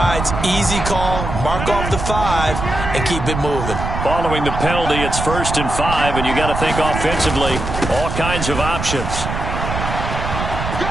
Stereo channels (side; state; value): right; noise; rumble, 4 dB below the sound